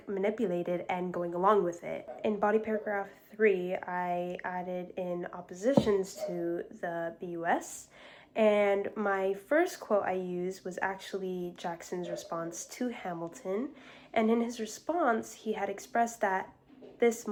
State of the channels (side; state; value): both; identical; correlation 1.00